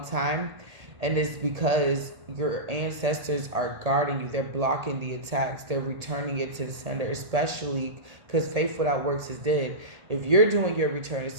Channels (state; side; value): late; left; 1.8 ms